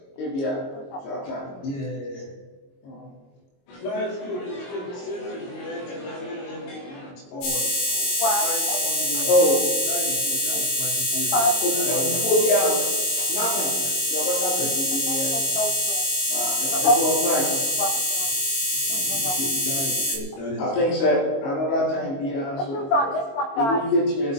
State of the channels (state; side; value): late; right; 22 ms